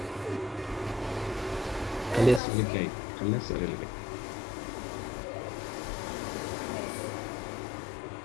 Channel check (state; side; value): drops out; right; at 2.4 s